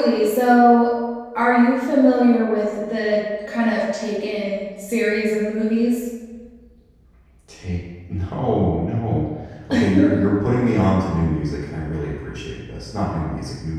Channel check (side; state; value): both; identical; correlation 1.00